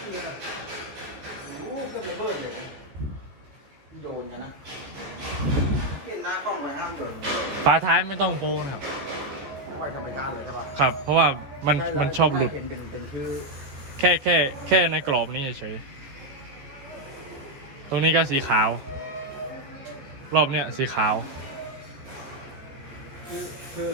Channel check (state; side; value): late; left; 14 ms